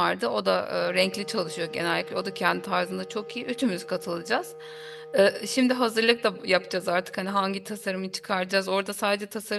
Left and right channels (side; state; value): both; identical; correlation 1.00